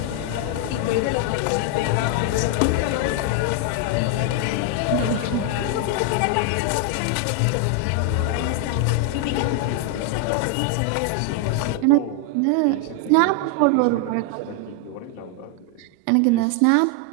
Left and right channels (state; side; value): different; both; correlation 0.00